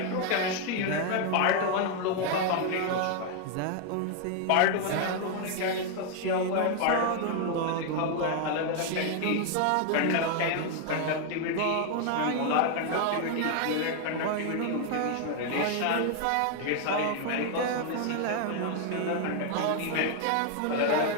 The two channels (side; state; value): both; different; correlation 0.00